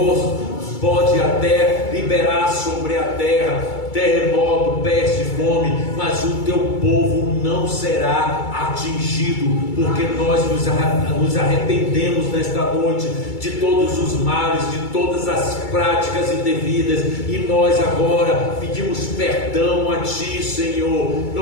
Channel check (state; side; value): late; right; 2.3 ms